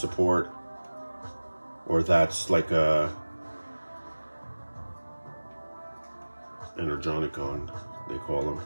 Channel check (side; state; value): both; inverted; correlation -1.00